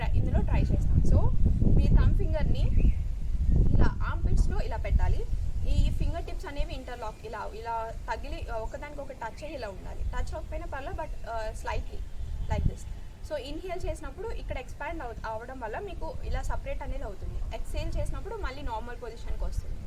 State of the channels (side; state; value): both; identical; correlation 1.00